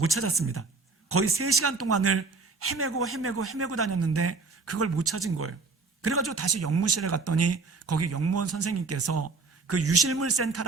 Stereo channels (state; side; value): quieter; left; 4.2 dB